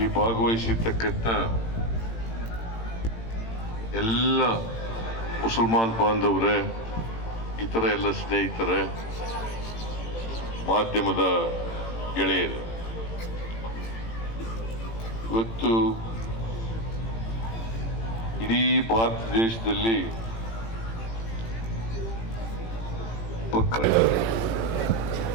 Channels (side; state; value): right; late; 18 ms